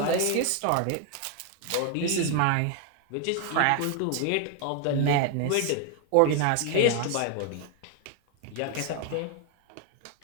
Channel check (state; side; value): different; both; correlation 0.01